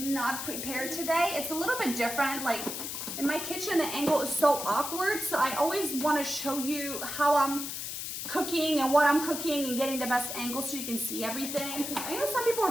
prepared today. It's a little bit different. Like in my kitchen, the angle is so awkward. So I always want to show you how I'm cooking and what I'm cooking and getting the best angle so you can see everything. I know some people are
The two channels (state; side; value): noise; left; hiss, 5 dB below the sound